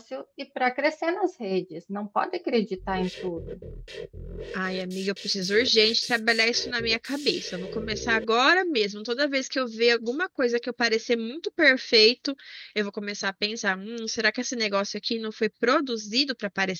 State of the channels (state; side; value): identical; both; correlation 1.00